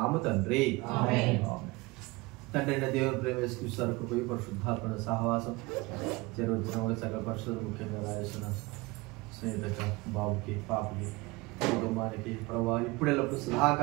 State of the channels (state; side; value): quieter; left; 23.5 dB